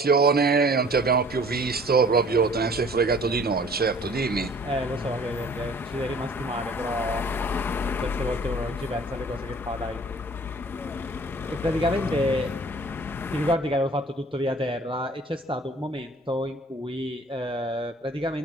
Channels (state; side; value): normal; both; correlation 0.51